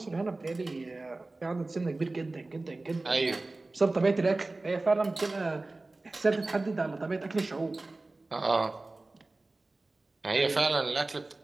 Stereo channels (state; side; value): quieter; left; 3.1 dB